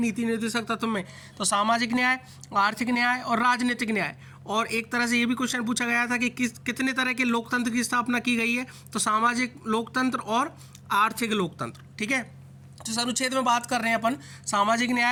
निर्देशक तत्व में। तो सामाजिक न्याय, आर्थिक न्याय और राजनीतिक न्याय। और एक तरह से ये भी क्वेश्चन पूछा गया था कि कितने तरह के लोकतंत्र की स्थापना की गई है, तो सामाजिक लोकतंत्र और आर्थिक लोकतंत्र, ठीक है। जिस अनुच्छेद में बात कर रहे हैं अपन, सामाजिक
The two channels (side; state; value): both; identical; correlation 1.00